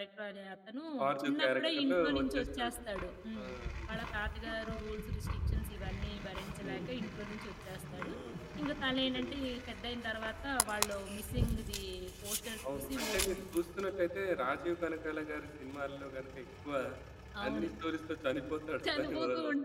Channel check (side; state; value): both; identical; correlation 1.00